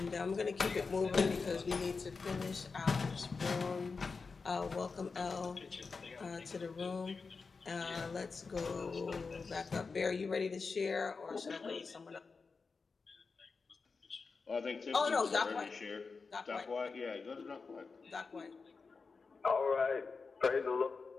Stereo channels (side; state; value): right; quieter; 4.6 dB